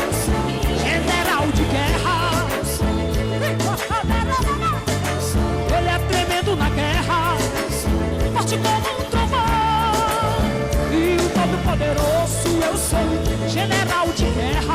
general de guerra. Ele é tremendo na guerra, forte como um trovão. E o Todo-Poderoso eu sou, general de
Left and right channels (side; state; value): both; identical; correlation 1.00